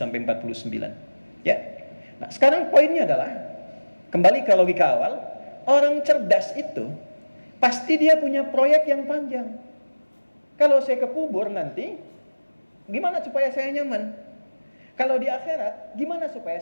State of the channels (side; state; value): both; inverted; correlation -1.00